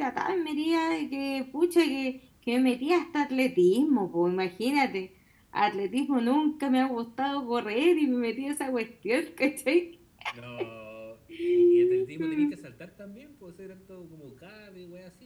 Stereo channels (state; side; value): identical; both; correlation 1.00